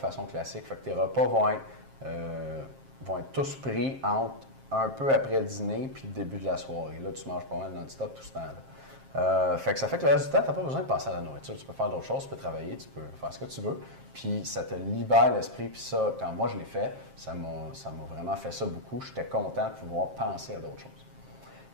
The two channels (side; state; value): left; late; 7.5 ms